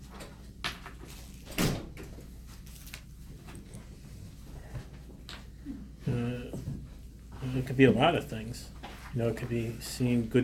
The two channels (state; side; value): identical; both; correlation 1.00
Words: It could be a lot of things. It could be seeing